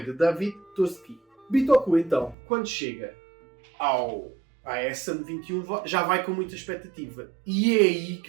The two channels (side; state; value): left; drops out; at 2.4 s